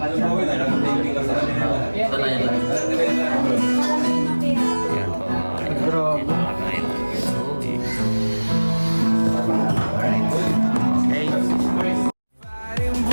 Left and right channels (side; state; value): both; inverted; correlation -1.00